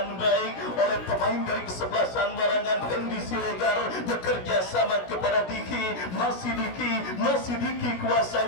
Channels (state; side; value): late; right; 16 ms